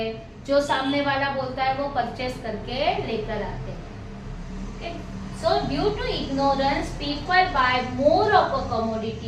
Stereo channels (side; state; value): both; identical; correlation 1.00